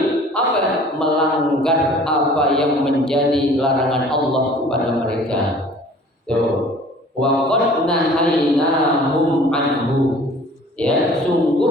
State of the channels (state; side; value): normal; both; correlation 0.49